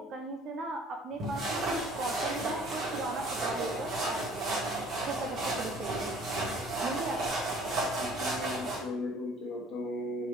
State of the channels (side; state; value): both; normal; correlation 0.53